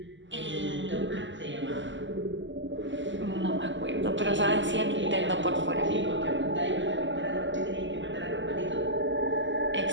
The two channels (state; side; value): late; left; 0.54 ms